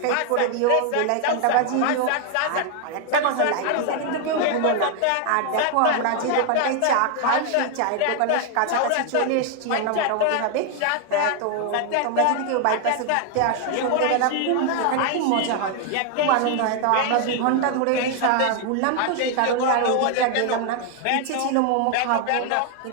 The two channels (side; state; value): both; different; correlation 0.00